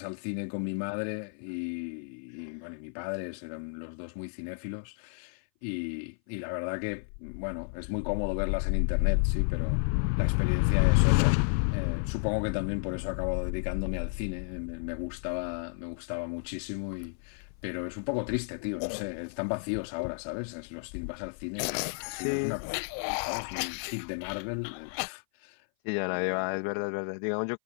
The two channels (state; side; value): silent; right; 56 dB below the other